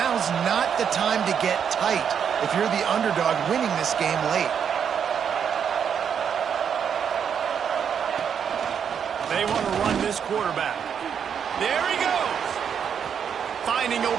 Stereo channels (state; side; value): quieter; left; 7.7 dB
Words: not the time to get tight if you're the underdog winning this game late. They want to run this quarterback. There he goes. Finding